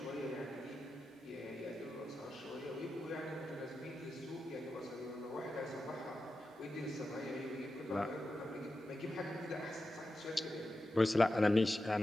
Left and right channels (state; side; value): normal; both; correlation 0.91